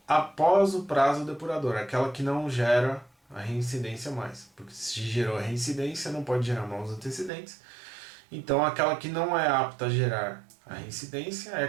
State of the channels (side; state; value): left; drops out; at 7.3 s